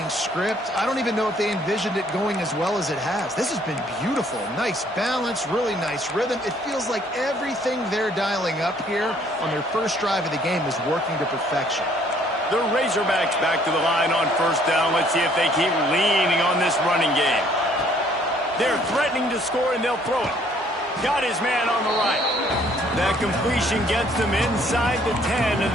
script, I don't even know if they envisioned it going as well as it has. This has been beautiful. Nice balance, really nice rhythm. It feels like everything they're dialing up here on their first drive of the game is working to perfection. The Razorbacks back to the line on first down. Let's see if they keep leaning on this running game. They're threatening to score, and they'll throw it. Got his man on the right. That completion gets them inside the 10, and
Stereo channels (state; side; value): normal; both; correlation 0.62